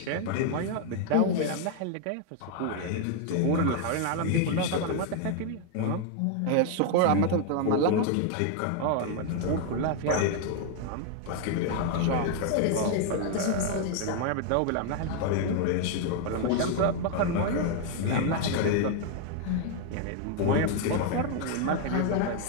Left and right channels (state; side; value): different; both; correlation 0.00